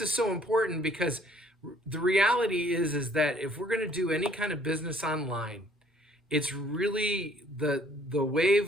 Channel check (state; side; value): normal; both; correlation 0.60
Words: is so important because the reality is that if we're going to do any kind of business online, it's really the